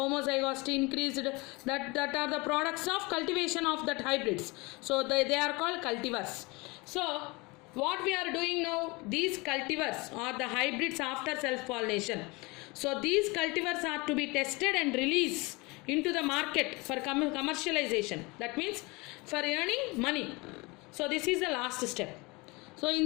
increased. That are the products of cultivation of that hybrids. So they are called cultivars. So what we are doing now, these cultivars are the hybrids after self-pollination. So these cultivars are to be tested and released into the market for commercialization. That means for earning money. So this is the last step. So in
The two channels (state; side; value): quieter; right; 25.5 dB